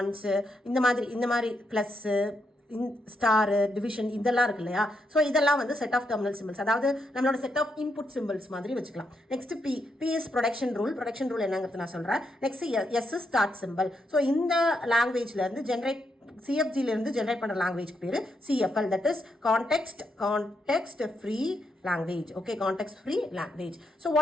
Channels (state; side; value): normal; both; correlation 0.81